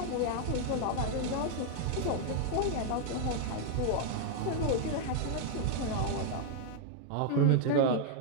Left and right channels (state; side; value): different; both; correlation 0.00